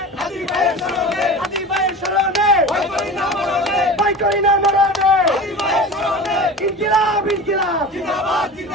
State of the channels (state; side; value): normal; both; correlation 0.34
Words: হাদি ভাইয়ের স্মরণে, হাদি ভাইয়ের স্মরণে, ভয় করি না মরণে, ইনকিলাব ইনকিলাব জিন্দাবাদ